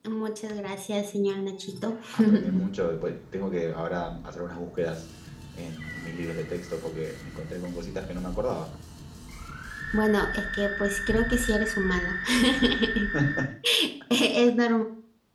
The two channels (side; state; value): both; identical; correlation 1.00